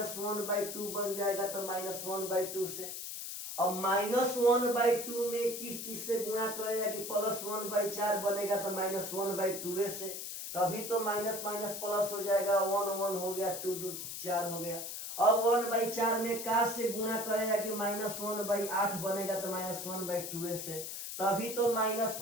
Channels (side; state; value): left; noise; hiss, 7 dB below the sound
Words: बन जाएगा? तो -1/2 से। अब -1/2 में किस चीज से गुणा करेगा कि +1/4 बनेगा? तो -1/2 से। तभी तो माइनस माइनस प्लस हो जाएगा। 1 1 हो गया, 2 2 4 हो गया। अब 1/4 में का से गुणा करेगा कि -1/8 बनेगा? तो -1/2 से। तभी तो माइनस